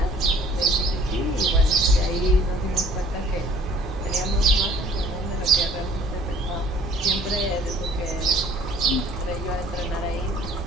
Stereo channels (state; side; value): normal; both; correlation 0.55